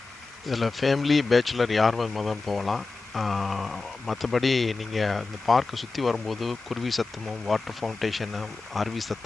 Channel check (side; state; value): right; quieter; 3.8 dB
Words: இதில் ஃபேமிலி, பேச்சுலர் யார் வேணுமாலும் போகலாம். மற்றபடி நீங்கள் இந்த பார்க்கை சுற்றி வரும்போது குருவி சத்தமும், வாட்டர் ஃபவுண்டேஷனு, அருவி